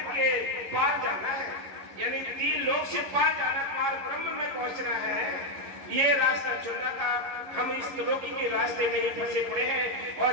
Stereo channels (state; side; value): late; left; 11 ms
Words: के पार जाना है, यानी 3 लोक से पार जाना, पार ब्रह्म में पहुंचना है। ये रास्ता चुनना था। हम इस त्रिलोकी के रास्ते में ही फंसे पड़े हैं और